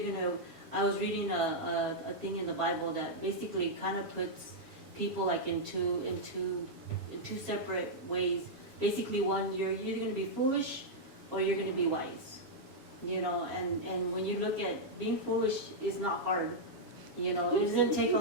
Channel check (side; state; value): left; late; 7.2 ms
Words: gonna. I was reading a thing in the Bible that basically kind of puts people like in two separate ways. Basically, one, you're either going to be foolish or you're going to be wise. And when you look at being foolish is not hard. It doesn't take a